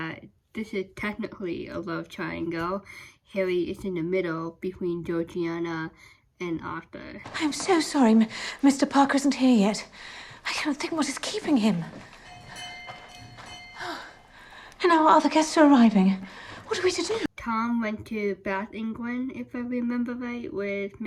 this is technically a love triangle. Harry is in the middle between Georgiana and Arthur. I'm so sorry, Mr. Parker isn't here yet. I cannot think what is keeping him. And our other guests are arriving. What are we to do? Tom went to Bath, England, if I remember right, with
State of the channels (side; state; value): both; identical; correlation 1.00